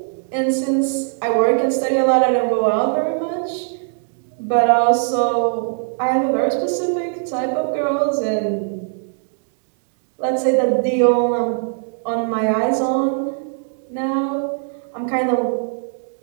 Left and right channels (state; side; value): silent; left; digital silence